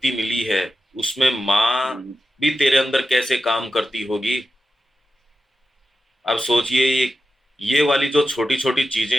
मिली है। उसमें माँ हम्म, भी तेरे अंदर कैसे काम करती होगी। अब सोचिए, ये वाली जो छोटी छोटी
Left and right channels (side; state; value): both; normal; correlation 0.91